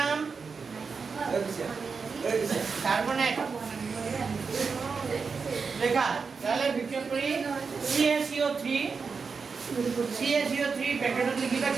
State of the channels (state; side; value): quieter; left; 5.2 dB